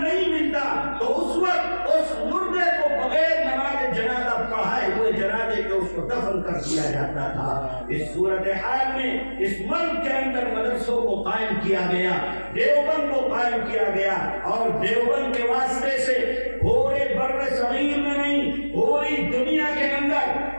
ملتا، تو اس وقت اس مردے کو بغیر نماز جنازہ پڑھائے ہوئے جنازے کے اس کو دفن کر دیا جاتا تھا۔ اس صورتحال میں اس ملک کے اندر مدرسوں کو قائم کیا گیا، دیوبند کو قائم کیا گیا، اور دیوبند کے واسطے سے پورے بر صغیر میں نہیں، پوری دنیا کے اندر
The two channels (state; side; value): inverted; both; correlation -1.00